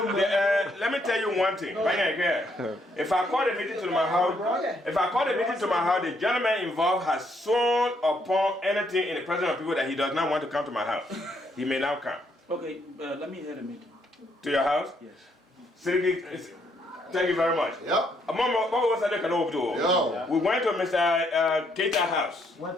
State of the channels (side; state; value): both; normal; correlation 0.72